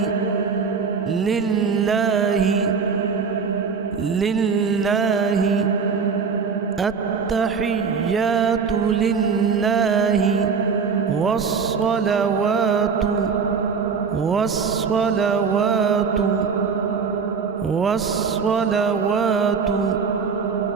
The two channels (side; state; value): left; quieter; 5.7 dB